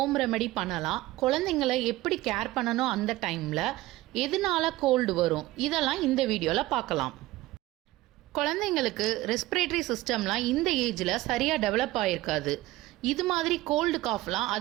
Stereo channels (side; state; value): left; quieter; 17.8 dB